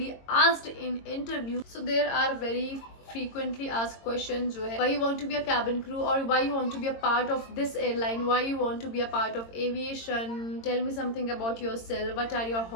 asked in interview. So there are very frequently asked questions जो है, why you want to be a cabin crew, or why you want to be a part of this airline, why you want to be a part of aviation, tell me something about yourself, what are your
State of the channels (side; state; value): right; late; 22 ms